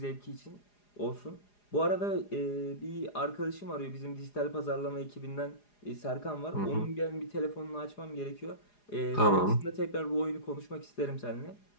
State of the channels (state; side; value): late; right; 4.9 ms